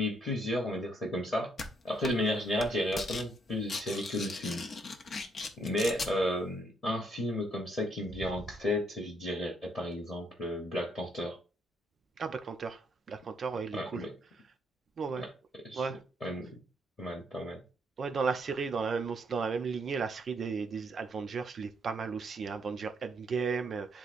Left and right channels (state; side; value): normal; both; correlation 0.72